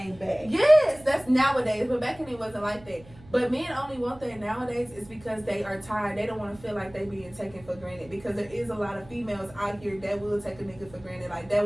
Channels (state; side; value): noise; right; hum, 22 dB below the sound